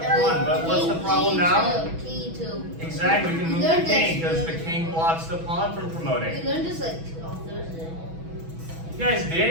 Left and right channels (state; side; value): late; left; 6.1 ms